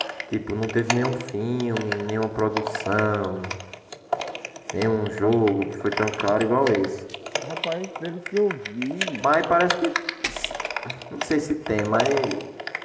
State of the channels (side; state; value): both; identical; correlation 1.00